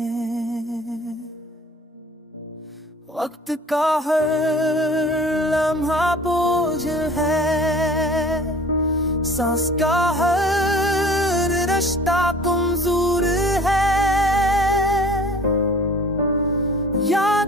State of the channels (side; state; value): both; normal; correlation 0.47